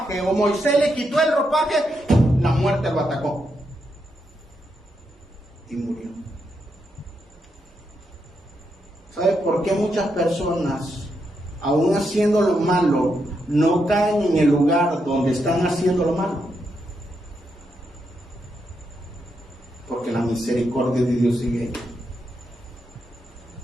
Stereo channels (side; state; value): both; normal; correlation 0.82